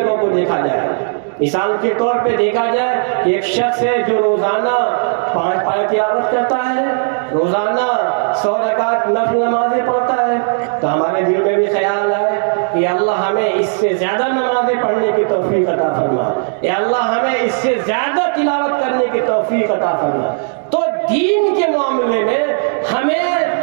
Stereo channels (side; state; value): left; silent; 69 dB below the other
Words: کو دیکھا جائے۔ مثال کے طور پہ دیکھا جائے کہ ایک شخص ہے جو روزانہ 5 پارہ تلاوت کرتا ہے، روزانہ 100 رکعت نفل نمازیں پڑھتا ہے، تو ہمارے دل میں بھی خیال آئے کہ اللہ ہمیں اس سے زیادہ نمازیں پڑھنے کی توفیق عطا فرما، یا اللہ ہمیں اس سے زیادہ تلاوت کرنے کی توفیق عطا فرما۔ تو دین کے معاملے میں ہمیں،